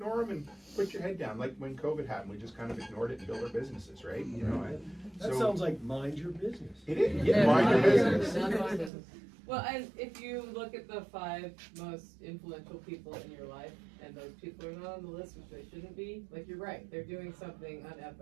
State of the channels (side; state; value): left; drops out; at 8.9 s